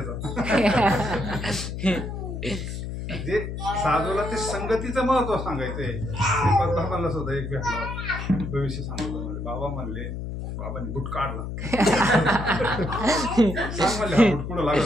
जे साधूला ते संगतीचं महत्व सांगायचंय. बाबांना सुद्धा एक भेटला, भविष्य सांगतो म्हणजे. बाबा म्हणले, बाबांनी बुट काढला. सांग म्हणले हा बुट कुठं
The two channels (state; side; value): noise; left; hum, 6 dB below the sound